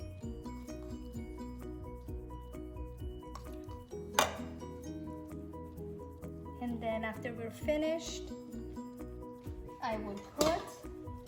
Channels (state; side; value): identical; both; correlation 1.00